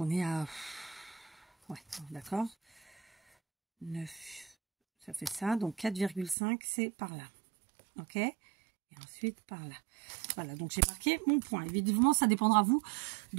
est à... Ouais, d'accord. 9. Ça fait ça. Donc, 4,5, c'est par là. OK? Et ensuite, par là. Voilà, donc j'ai marqué mon point. Évidemment, ça dépendra, vous,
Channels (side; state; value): left; drops out; at 6.4 s